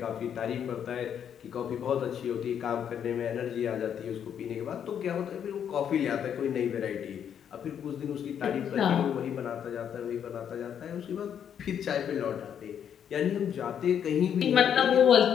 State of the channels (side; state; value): right; quieter; 8.7 dB